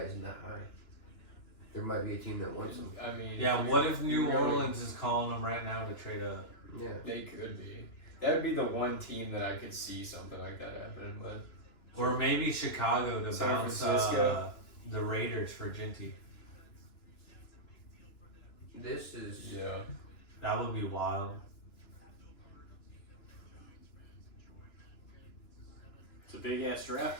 that high? there might be a team that wants him. I mean, Yeah, what if New you really- Orleans is calling them right now to trade up? Yeah. They could be. That would be the one team that I could see something like that happening with. Or maybe Chicago to San bounce Francisco. the Raiders for Ginty. This is Yeah. That would be wild. It's a big ass draft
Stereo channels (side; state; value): right; late; 2.9 ms